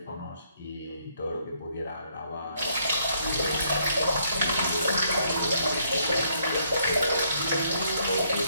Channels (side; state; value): both; inverted; correlation -0.69